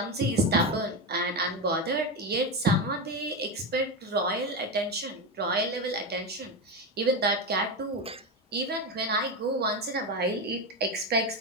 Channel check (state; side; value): normal; both; correlation 0.14